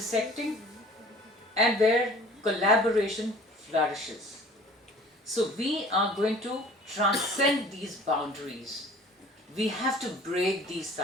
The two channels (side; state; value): both; normal; correlation 0.48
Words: and where collaboration flourishes. So we are going to transcend these boundaries. We have to break these